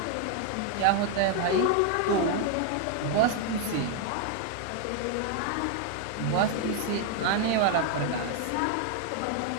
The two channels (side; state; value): both; different; correlation 0.00